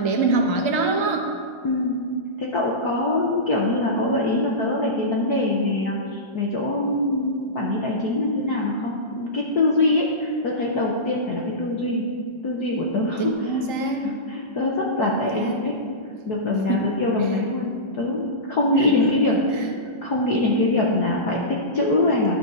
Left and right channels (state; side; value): late; right; 1.3 ms